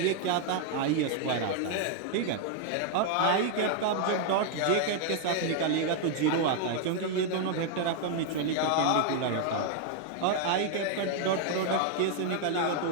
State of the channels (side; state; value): both; different; correlation 0.00